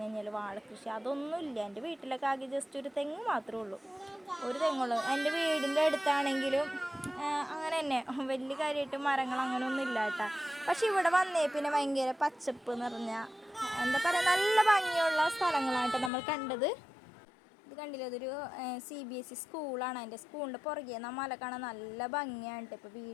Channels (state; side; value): drops out; right; at 16.1 s